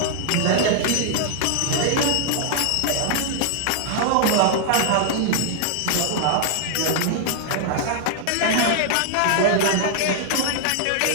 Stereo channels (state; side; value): different; both; correlation 0.00